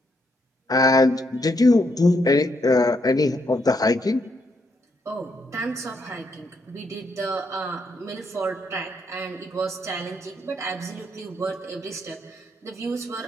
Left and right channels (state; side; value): normal; both; correlation 0.76